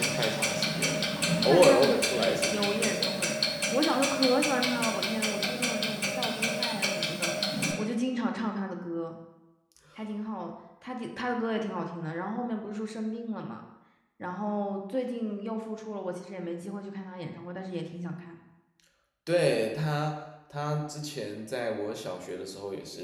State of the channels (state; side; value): identical; both; correlation 1.00